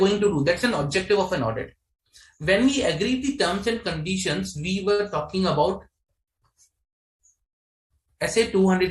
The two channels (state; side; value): identical; both; correlation 1.00